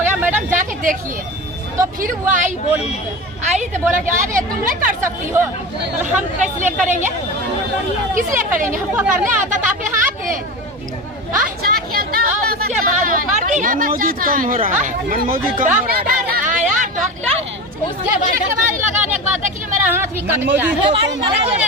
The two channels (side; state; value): both; normal; correlation 0.27